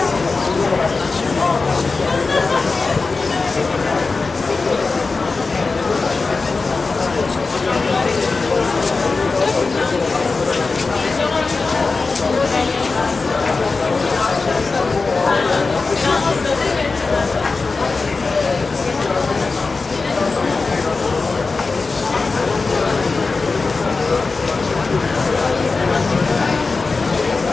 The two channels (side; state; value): right; quieter; 4.1 dB